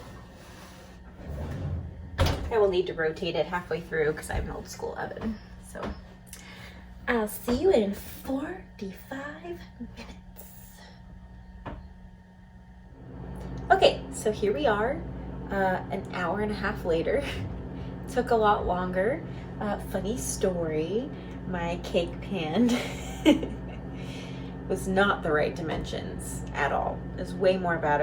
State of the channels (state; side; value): identical; both; correlation 1.00